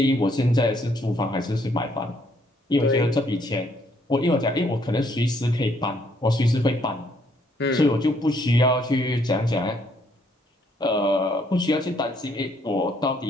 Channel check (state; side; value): normal; both; correlation 0.68